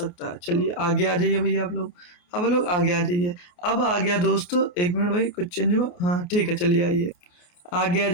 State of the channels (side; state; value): right; late; 28 ms